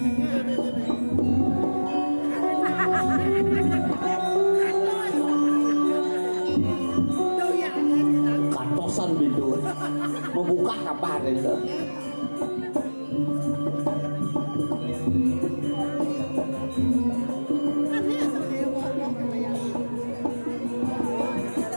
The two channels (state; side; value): inverted; both; correlation -1.00